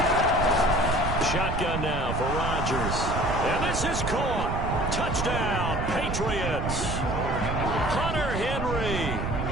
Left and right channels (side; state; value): right; noise; rumble, 3 dB below the sound